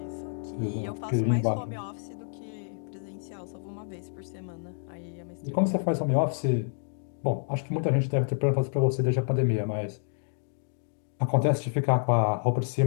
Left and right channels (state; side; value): silent; right; digital silence